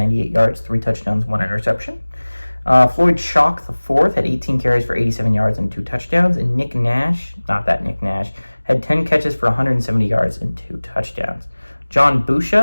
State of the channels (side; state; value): both; inverted; correlation -1.00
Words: yards, 3 touchdowns, 1 interception. Floyd Shock IV had 18 carries for 87 yards and 2 touchdowns. And Nick Nash, not that Nick Nash, had 10 catches for 170 yards and 2 touchdowns. John